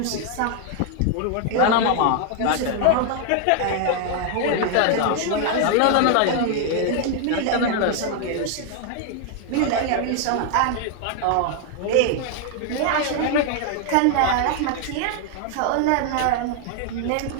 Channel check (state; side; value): different; both; correlation 0.00